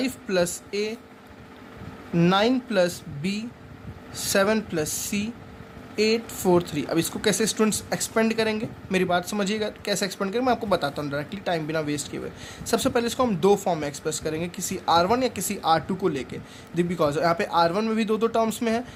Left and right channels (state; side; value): identical; both; correlation 1.00